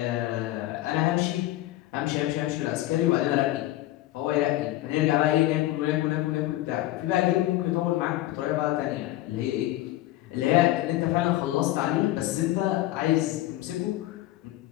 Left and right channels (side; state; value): right; quieter; 15.8 dB